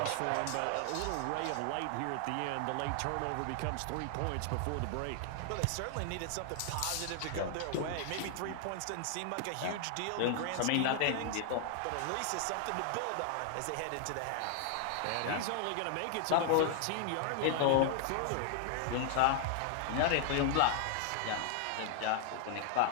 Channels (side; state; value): both; different; correlation 0.00